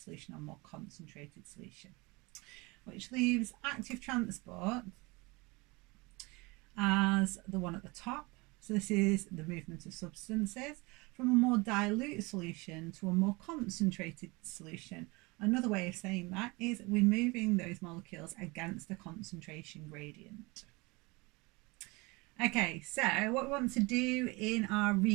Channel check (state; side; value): quieter; left; 25.4 dB